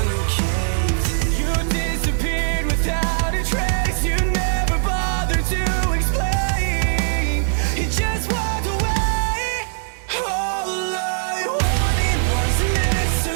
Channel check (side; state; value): left; silent; digital silence